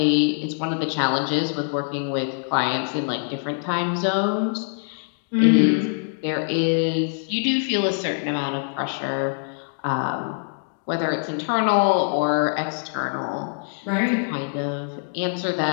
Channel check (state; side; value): silent; right; digital silence